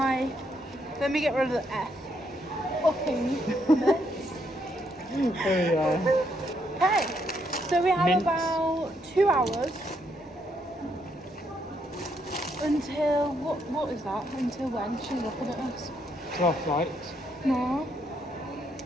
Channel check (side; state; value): both; normal; correlation 0.75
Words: Let me get rid of the F. Fucking mess. Oh yeah. Okay, so we have Mints. about 2 hours until what is that? Until when? She's looking at us. 12 flight. No.